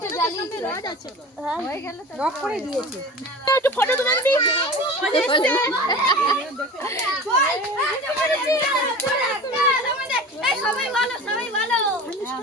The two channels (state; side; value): normal; both; correlation 0.36